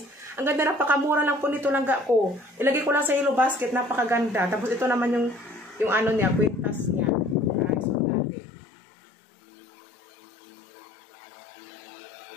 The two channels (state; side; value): drops out; right; at 8.1 s